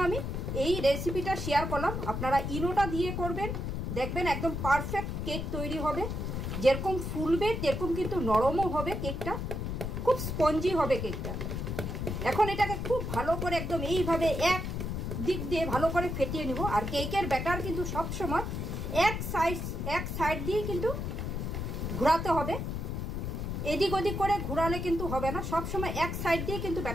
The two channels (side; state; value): left; noise; rumble, 3 dB below the sound